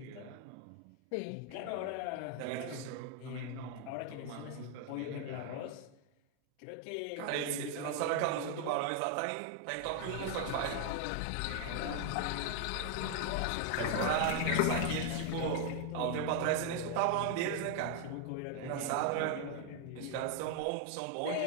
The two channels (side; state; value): both; different; correlation 0.00